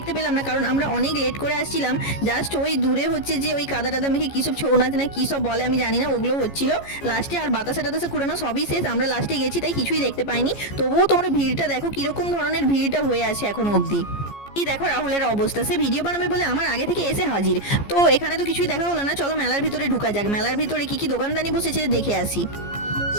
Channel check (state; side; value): late; right; 14 ms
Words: পেলাম না, কারণ আমরা অনেক লেট করে আসছিলাম। জাস্ট ওই দূরে হচ্ছে যে ওই কাদা টাদা মেখে কী সব ছৌ নাচ না কী সব বলে আমি জানি না, ওগুলো হচ্ছিল লাস্টে। আর বাতাসা টাতাসা কুড়ানো সবই শেষ, আমরা লাস্টে গেছি তাই কিছুই দেখতে পাইনি। তবুও তোমরা ভিড়টা দেখো কীরকম ধরনের ভিড়টা হয়ে আছে এখনো অবধি। এই দেখো রাহুলের অবস্থা, সে ভিডিও বানাবে বলে আমার আগে থেকে এসে হাজির। তো এখানে তো কিছুই দেখা হলো না, চলো মেলার ভিতরে ঢুকা যাক। মেলার ভিতরে কি কি দোকানদানি বসেছে দেখে আসি।